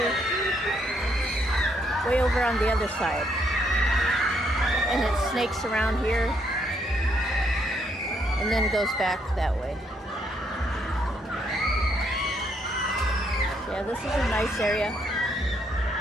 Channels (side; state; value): both; normal; correlation 0.73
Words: way over on the other side. And it snakes around here and then goes back that way. Yeah, this is a nice area.